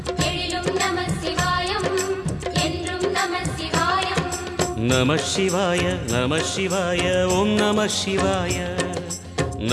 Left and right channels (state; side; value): identical; both; correlation 1.00